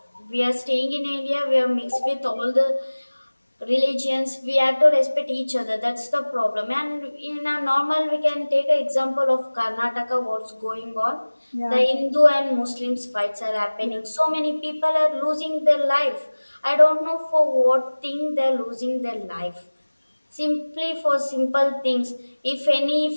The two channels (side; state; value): both; inverted; correlation -1.00